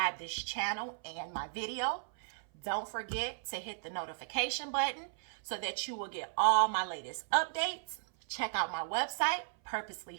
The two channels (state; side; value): silent; left; 54 dB below the other